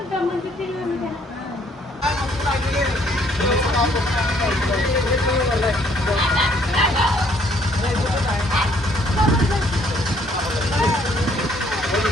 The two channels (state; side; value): normal; both; correlation 0.64